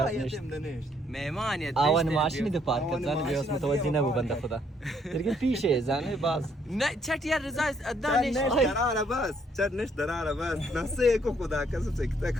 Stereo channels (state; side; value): normal; both; correlation 0.68